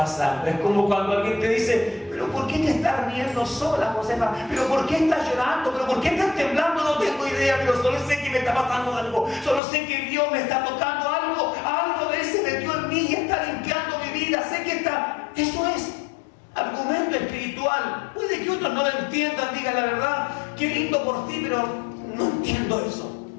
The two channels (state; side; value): drops out; right; at 9.6 s